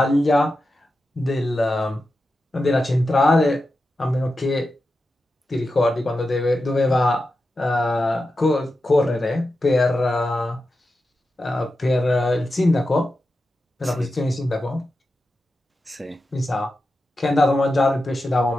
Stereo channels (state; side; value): normal; both; correlation 0.90